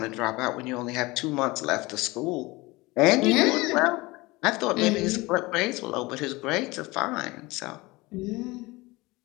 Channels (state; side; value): quieter; right; 22.1 dB